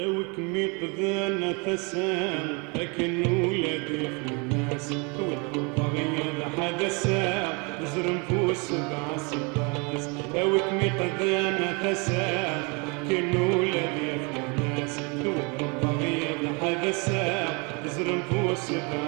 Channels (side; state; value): left; quieter; 31.1 dB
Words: قذانا ثسان لكن ولادي في الناس والبغية حدثا زرم فوس سبع سباس وكمي قذانا ثسان لكن ولادي في الناس والبغية حدثا زرم فوس